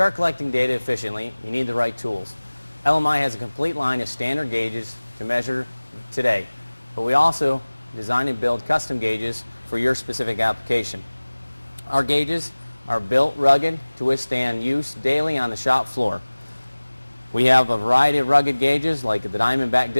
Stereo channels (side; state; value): both; inverted; correlation -1.00